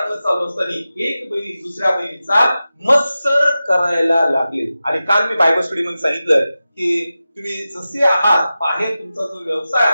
चालू असताना एक बहिणी दुसऱ्या बहिणीचा मत्सर करायला लागले. आणि काल मी बायबल स्टडी मध्ये सांगितलं की तुम्ही जसे आहात, बाहेर तुमचा जो व्यवसाय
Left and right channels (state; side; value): inverted; both; correlation -0.94